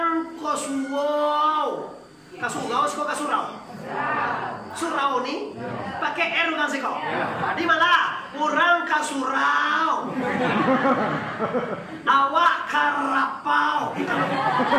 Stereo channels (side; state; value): both; identical; correlation 1.00